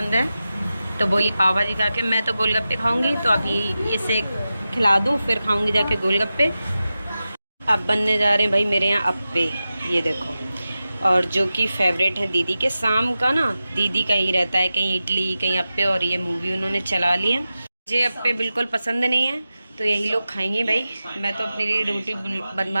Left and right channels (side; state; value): both; inverted; correlation -0.93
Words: है, तो बोली पाव भाजी खा के मैं तो गोलगप्पे खाऊंगी, तो अभी इसे खिला दूँ फिर खाऊंगी जाके गोलगप्पे। अब बनने जा रहे हैं भाई मेरे यहाँ अप्पे, ये देखो और जो कि फेवरेट है दीदी के। शाम का ना दीदी का ही रहता है, कहीं इडली कहीं अप्पे, और ये मूवी उन्होंने चला ली है। मुझे अप्पे बिल्कुल पसंद नहीं है, तो यही लोग खाएंगे भाई। मैं तो अपने लिए रोटी